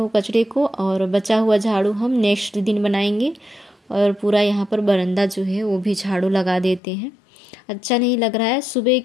कचरे को और बचा हुआ झाड़ू हम नेक्स्ट दिन बनाएंगे। और पूरा यहाँ पर बरामदा जो है वो भी झाड़ू लगा देते हैं। अच्छा नहीं लग रहा है, सुबह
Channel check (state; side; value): drops out; right; at 6.8 s